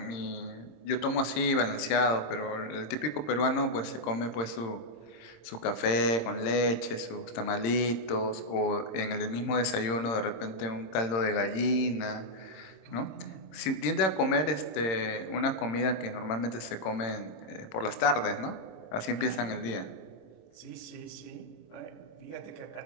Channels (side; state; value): right; late; 26 ms